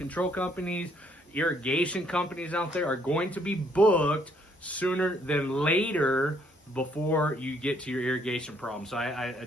companies, irrigation companies out there are going to be booked sooner than later before you get to your irrigation problem. So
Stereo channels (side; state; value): both; normal; correlation 0.68